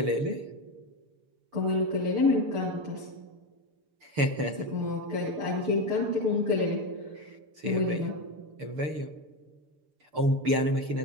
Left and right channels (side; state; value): left; late; 6.8 ms